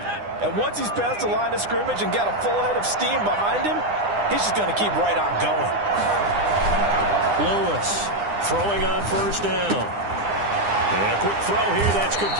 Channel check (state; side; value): late; left; 9.9 ms